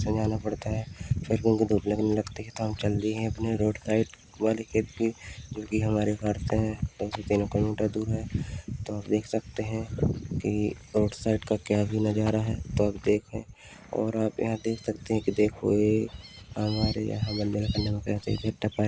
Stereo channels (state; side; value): identical; both; correlation 1.00